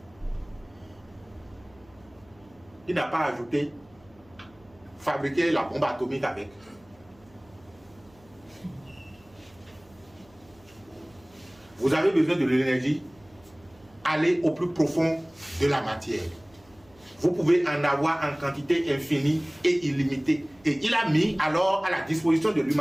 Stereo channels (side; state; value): right; noise; hum, 28 dB below the sound